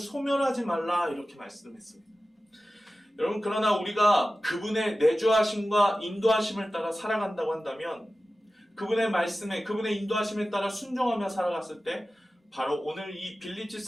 말라 이렇게 말씀했습니다. 여러분, 그러나 우리가 그분의 내주하심과 인도하심을 따라 살아간다고 한다면, 그분의 말씀에, 그분의 인도하심에 따라 순종하며 살아갔을 때 바로 오늘 이 빌립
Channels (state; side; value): normal; both; correlation 0.95